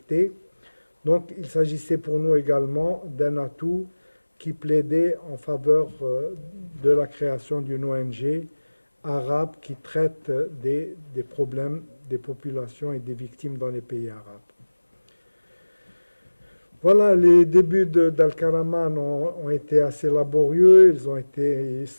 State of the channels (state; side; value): inverted; both; correlation -1.00